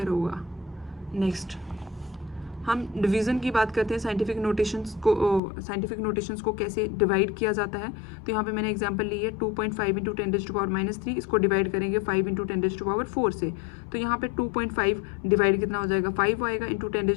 होगा। नेक्स्ट हम डिवीज़न की बात करते हैं। साइंटिफिक नोटेशंस को कैसे डिवाइड किया जाता है। तो यहाँ पे मैंने एग्जांपल ली है 2.5 इंटू 10⁻³ इसको डिवाइड करेंगे 5 इंटू 10⁻⁴ से। तो यहाँ पे 2.5 डिवाइड कितना हो जाएगा 5 आएगा, इंटू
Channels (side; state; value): right; drops out; at 5.4 s